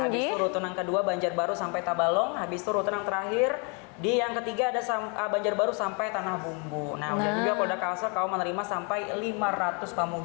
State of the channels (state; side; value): quieter; right; 35.1 dB